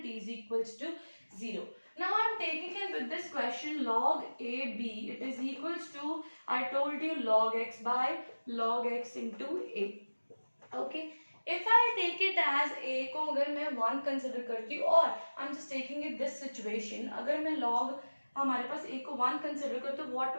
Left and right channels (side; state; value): both; inverted; correlation -1.00